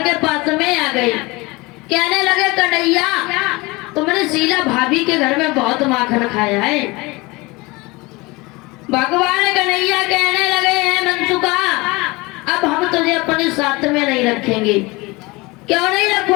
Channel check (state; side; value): quieter; right; 23.7 dB